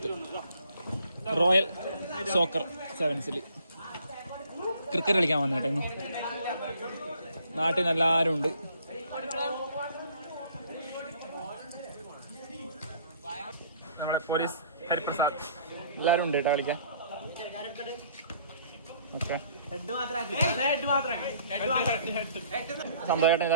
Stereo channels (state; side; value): inverted; both; correlation -0.58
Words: royal soccer സെവൻസിൽ cricket കളിക്കാൻ വന്നേട്ടെ. ഇന്ന് നാട്ടിൽ നിന്ന് എല്ലാവരും ഉണ്ട്. നമ്മുടെ പോലീസ് ഹരിപ്രസാദ് എല്ലാവരും ഉണ്ട് കേട്ടോ കളിക്കാൻ. ഓക്കെ, സന്തോഷേട്ടൻ